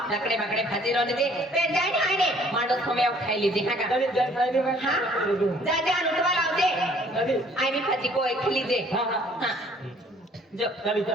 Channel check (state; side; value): normal; both; correlation 0.58